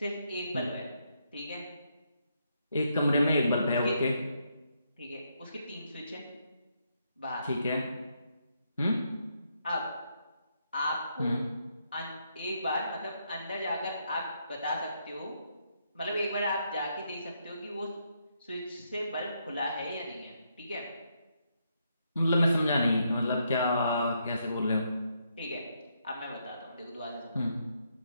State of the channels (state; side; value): inverted; both; correlation -0.77